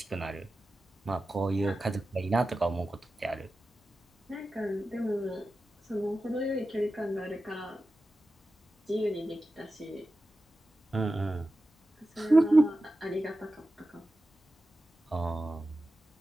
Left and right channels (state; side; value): normal; both; correlation 0.93